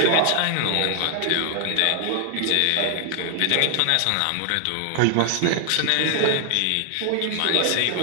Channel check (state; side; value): different; both; correlation 0.00